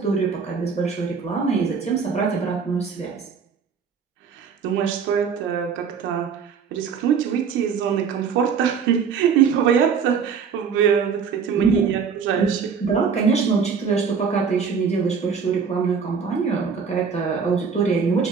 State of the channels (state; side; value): quieter; left; 6.2 dB